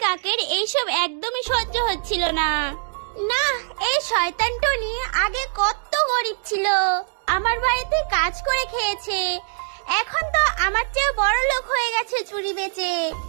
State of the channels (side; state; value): left; silent; digital silence